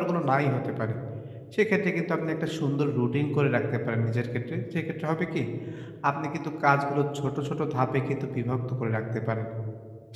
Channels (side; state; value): both; identical; correlation 1.00